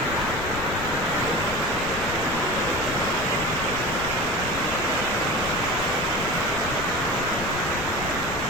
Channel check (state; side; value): noise; left; rumble, 10 dB below the sound